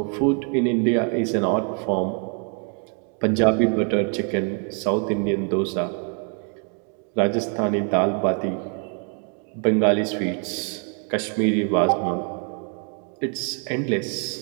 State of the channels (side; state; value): left; quieter; 39.2 dB